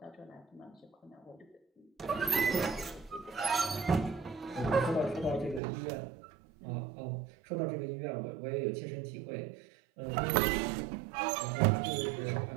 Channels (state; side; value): drops out; left; at 5.6 s